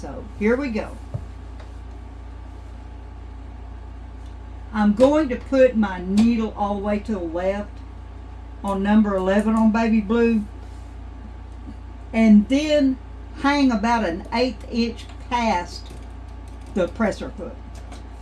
here we go. I'm going to put my needle all the way to the left on number 11 on baby blue, and then hang about an 1/8 inch past the presser foot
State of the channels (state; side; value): identical; both; correlation 1.00